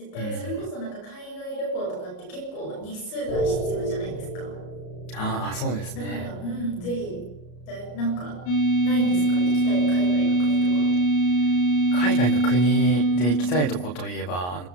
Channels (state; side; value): late; right; 33 ms